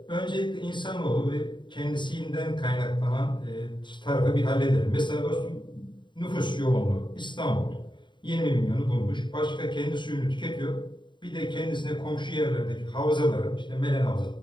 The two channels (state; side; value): late; right; 0.23 ms